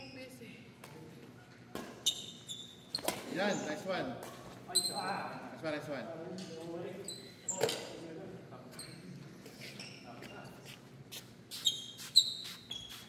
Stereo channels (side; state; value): both; identical; correlation 1.00